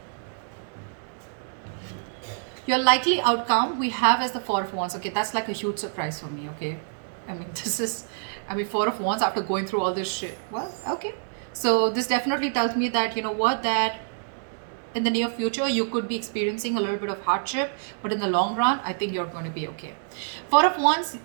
your likely outcome we have as the Four of Wands. Okay, that's like a huge surprise for me. Okay, I mean, this is, I mean, Four of Wands after going through all this shit. Well, okay, so this definitely tells me that, you know what, that in the near future you could be experiencing a little bit of hardship, but in the long run I think you're going to be okay. Four of Wands,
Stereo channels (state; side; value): silent; left; digital silence